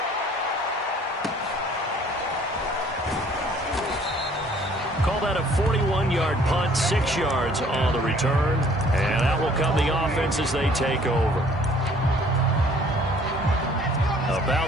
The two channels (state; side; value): normal; both; correlation 0.57